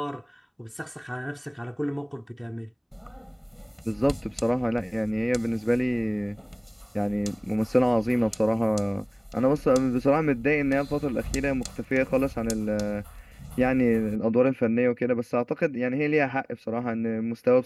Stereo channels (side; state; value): both; identical; correlation 1.00